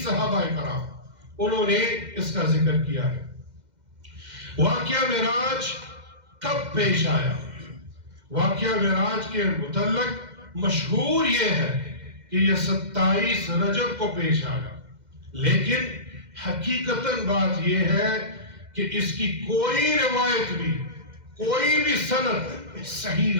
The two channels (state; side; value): late; left; 2.1 ms